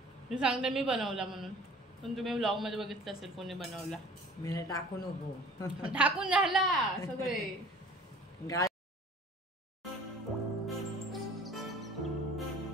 मी सांगते मी बनवला म्हणून, पण तुम्ही व्लॉग मध्ये बघितलं असेल कोणी बनवला. मी टाकू नको. टाकून झाला सगळे.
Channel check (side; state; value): both; normal; correlation 0.47